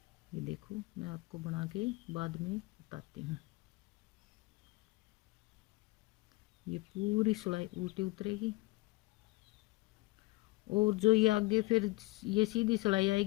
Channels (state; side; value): quieter; right; 21.4 dB